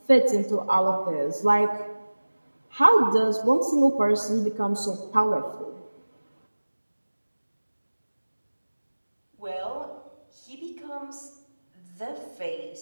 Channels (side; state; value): both; inverted; correlation -1.00